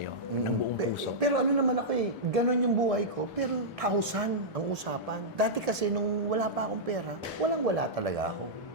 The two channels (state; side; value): normal; both; correlation -0.11